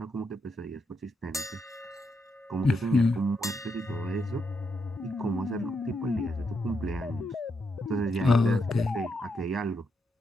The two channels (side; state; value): both; normal; correlation 0.81